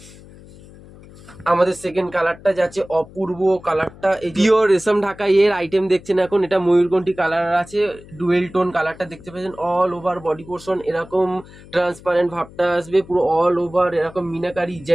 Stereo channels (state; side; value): noise; left; hum, 20 dB below the sound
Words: আমাদের সেকেন্ড কালারটা যাচ্ছে অপূর্ব কালারটা, এই পিওর রেশম ঢাকাই এর আইটেম দেখছেন এখন। এটা ময়ূরকণ্ঠী কালার আছে, ডুয়েল টোন কালারটা দেখতে পাচ্ছেন। অল ওভার বডি পোর্শন এরকম ট্রান্সপারেন্ট ভাবটা আসবে, পুরো অল ওভার এরকম মিনাকারি